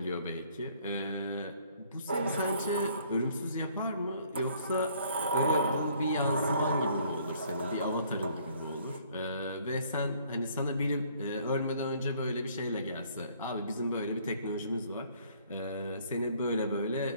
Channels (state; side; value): inverted; both; correlation -0.61